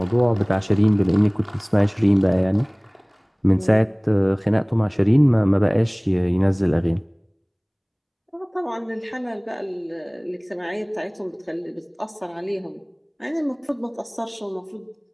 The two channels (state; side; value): identical; both; correlation 1.00